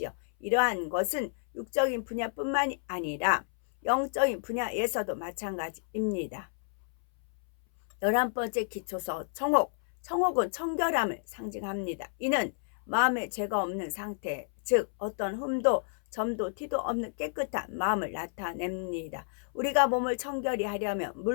이러한 것은 육적인 분야뿐만이 아니라 영적인 분야에서도 마찬가지입니다. 11번째 기초석 청옥. 청옥은 청결함을 상징합니다. 이는 마음에 죄가 없는 상태, 즉 어떤 흠도 점도 티도 없는 깨끗한 마음을 나타냅니다. 우리가 몸을 청결히 하려면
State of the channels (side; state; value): right; silent; 57 dB below the other